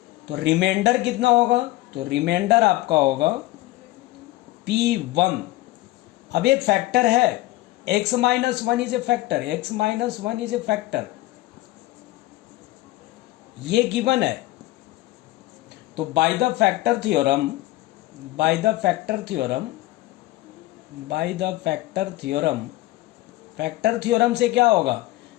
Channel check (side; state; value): right; quieter; 17.7 dB